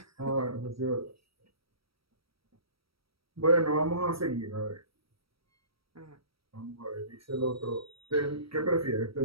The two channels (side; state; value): left; late; 0.75 ms